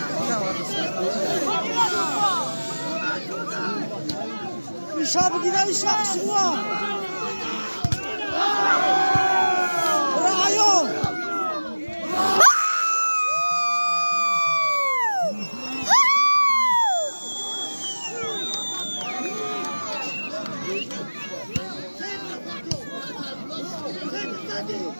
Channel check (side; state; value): both; inverted; correlation -1.00